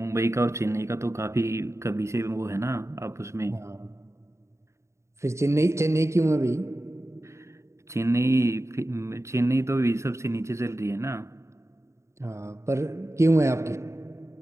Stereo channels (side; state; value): left; late; 0.14 ms